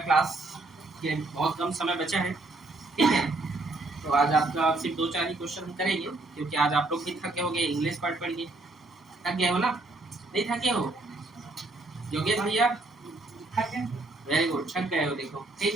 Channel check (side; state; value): left; quieter; 3.0 dB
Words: के बहुत कम समय बचा है। ठीक है, तो आज आपका सिर्फ 2-4 ही क्वेश्चन हम करेंगे, क्योंकि आज आप लोग भी थके हो गए, इंग्लिश पढ़ के थक गए हो ना? नहीं थके हो योगेश भैया? वेरी गुड, थक गए हो देखो। ठीक